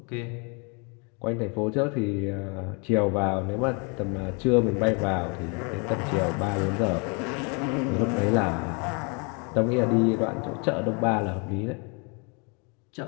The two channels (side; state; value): right; quieter; 33.8 dB